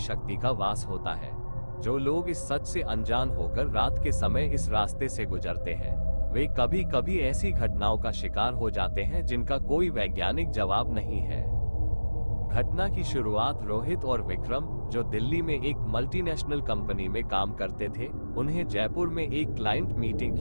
का वास होता है। जो लोग इस सच से अनजान होकर रात के समय इस रास्ते से गुजरते हैं, वे कभी कभी ऐसी घटनाओं का शिकार हो जाते हैं जिनका कोई वैज्ञानिक जवाब नहीं है। घटना की शुरुआत रोहित और विक्रम, जो दिल्ली में एक मल्टीनेशनल कंपनी में काम करते थे, उन्हें जयपुर में एक क्लाइंट मीटिंग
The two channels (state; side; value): inverted; both; correlation -1.00